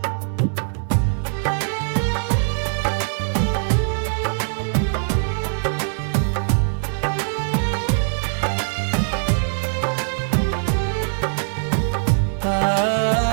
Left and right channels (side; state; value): left; silent; 64 dB below the other